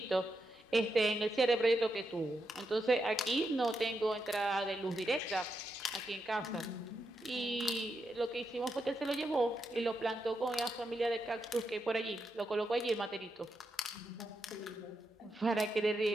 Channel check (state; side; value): normal; both; correlation 0.84